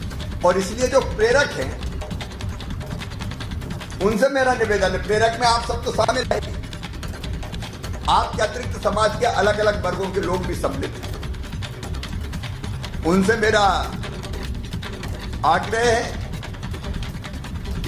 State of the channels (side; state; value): both; identical; correlation 1.00